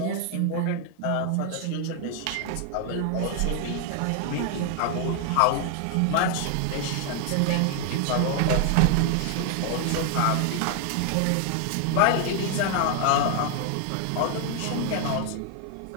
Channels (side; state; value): both; different; correlation 0.00